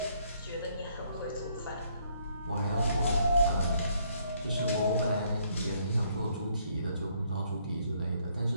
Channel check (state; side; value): inverted; both; correlation -0.69